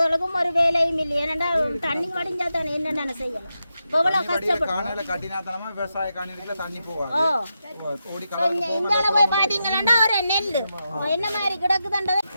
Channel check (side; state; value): both; inverted; correlation -0.87